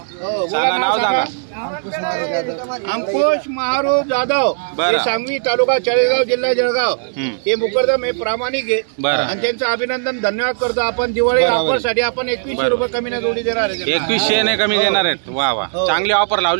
सांगा नाव सांगा। अंकुश महारूप जाधव, हे सांगवी तालुका चाळीसगाव जिल्हा जळगाव। हे मुकरदम हे प्रामाणिक आहे आणि त्यांचं अभिनंदन धन्यवाद करतो। आपण दिवाळी ऑफर साठी आपण 2100 रुपये कमी न जोडी देणार आहे। 2100 ने कमी देणार आहेत। वा वा, चांगली ऑफर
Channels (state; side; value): silent; left; digital silence